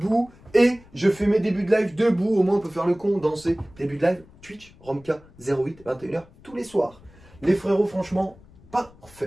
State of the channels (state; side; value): noise; left; rumble, 25 dB below the sound